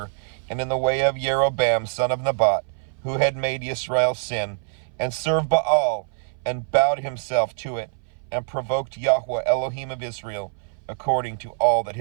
and in the way of Jeroboam, son of Nebat, who had made Israel sin, and served Baal, and bowed himself to it, and provoked Yahweh, Elohim of Israel, according to all that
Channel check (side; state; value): left; silent; 59 dB below the other